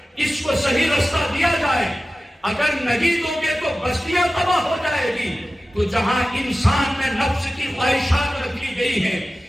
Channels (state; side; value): normal; both; correlation 0.95